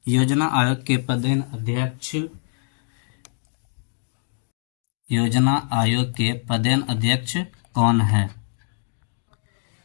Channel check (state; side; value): silent; right; digital silence